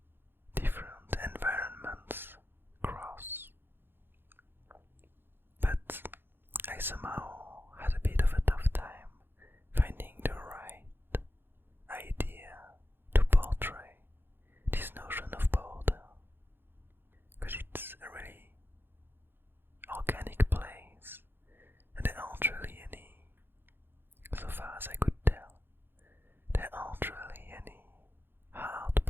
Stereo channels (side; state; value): left; late; 0.10 ms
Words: different environments cross. But I somehow had a bit of a tough time finding the right idea to portray this notion of border, because it's a really organic place and there aren't really any, so far as I could tell, there aren't really any hard